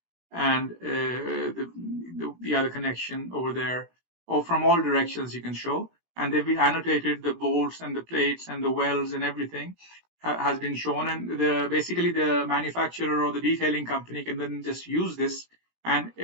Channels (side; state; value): left; late; 18 ms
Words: And the other connection over there, or from all directions you can show. And they've been annotated, the bolts and the plates and the welds and everything has been shown. And basically the manufacturer or the detailing company can then just use this. And